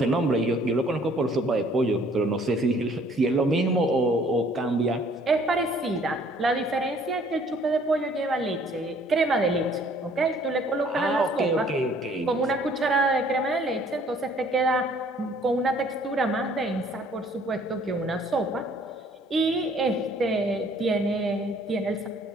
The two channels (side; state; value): both; normal; correlation 0.59